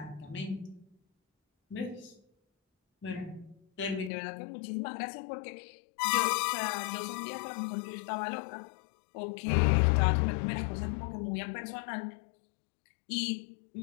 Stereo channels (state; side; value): drops out; right; at 4.1 s